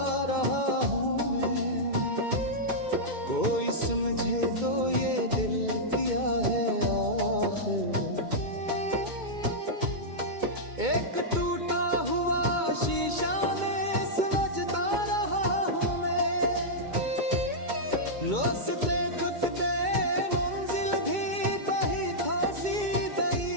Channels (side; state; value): left; late; 2.2 ms